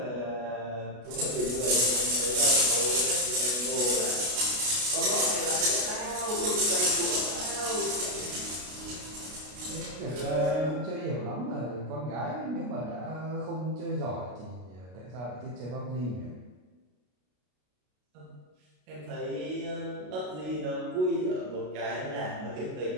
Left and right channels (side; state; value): left; late; 33 ms